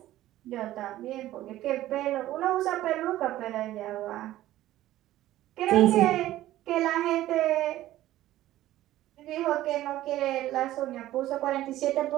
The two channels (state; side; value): quieter; left; 14.7 dB